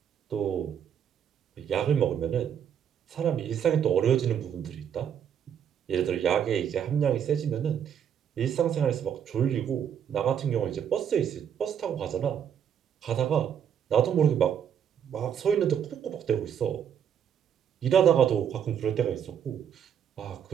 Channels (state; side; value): quieter; left; 8.6 dB